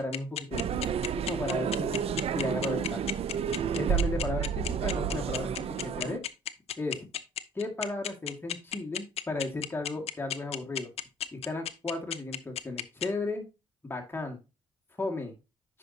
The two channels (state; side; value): normal; both; correlation 0.53